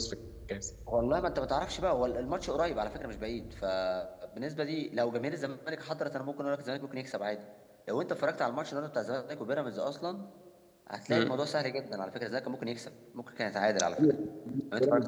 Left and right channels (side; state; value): both; identical; correlation 1.00